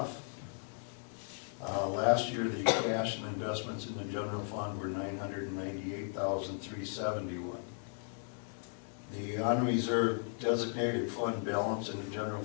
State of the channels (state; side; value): silent; right; 54 dB below the other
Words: Last year, the cash and investments in the general fund were $998,371. The unreserved designated fund balance in the general